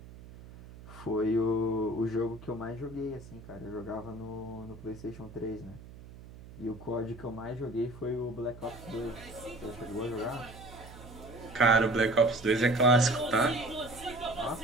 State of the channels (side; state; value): right; noise; hum, 17 dB below the sound